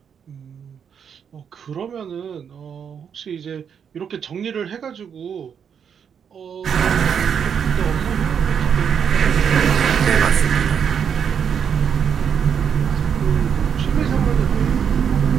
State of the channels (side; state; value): left; quieter; 7.5 dB